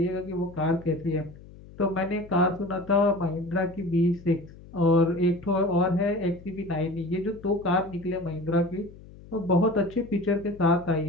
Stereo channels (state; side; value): noise; left; hum, 19 dB below the sound